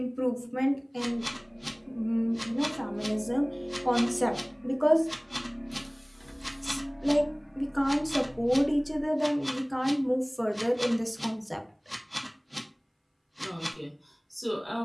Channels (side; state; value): both; identical; correlation 1.00